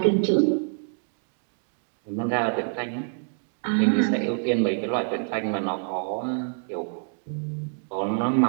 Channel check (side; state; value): left; silent; 61 dB below the other